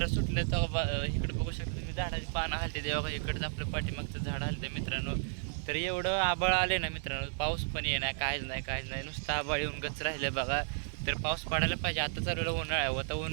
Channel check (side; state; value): left; silent; 56 dB below the other